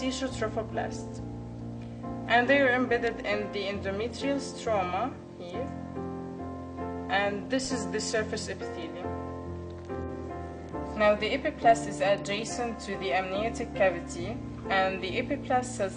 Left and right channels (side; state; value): both; identical; correlation 1.00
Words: And they are embedded in the endometrial stroma here, and this is the surface epithelium. Now, the epiblast is adjacent to the amniotic cavity, and the epiblast cells